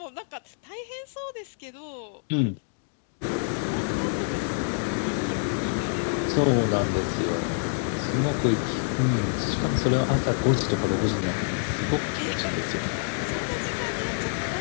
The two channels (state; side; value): silent; right; digital silence